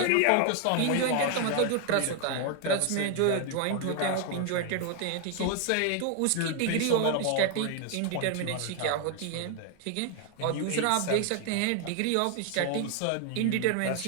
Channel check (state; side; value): different; both; correlation 0.00